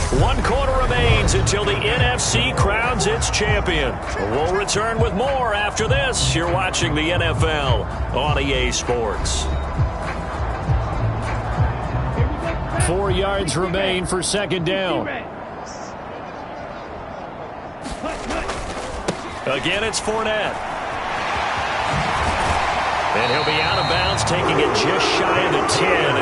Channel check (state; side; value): identical; both; correlation 1.00